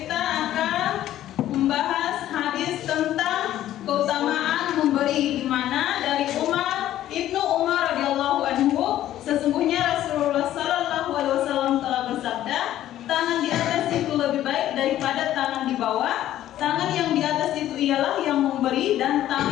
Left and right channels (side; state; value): right; quieter; 12.9 dB